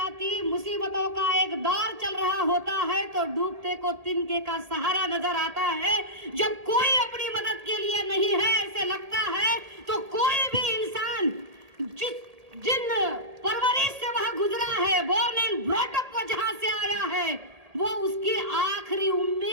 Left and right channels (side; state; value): left; late; 1.8 ms